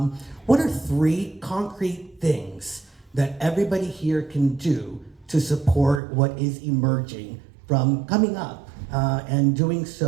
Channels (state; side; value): drops out; left; at 6.0 s